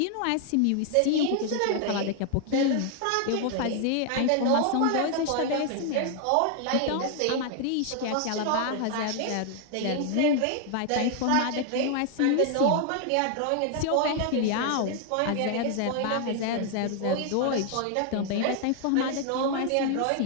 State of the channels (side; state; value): both; different; correlation 0.00